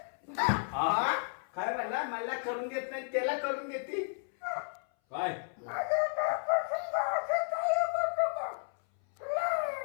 काय म्हणला मला करून देत नाही त्याला करून देते काय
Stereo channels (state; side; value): silent; right; 56 dB below the other